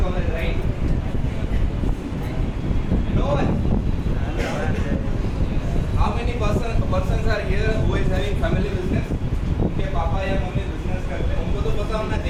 college, right? No one. How many persons are here who is having family business? उनके पापा या mummy business करते हैं, उनको तो पता होना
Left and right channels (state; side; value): identical; both; correlation 1.00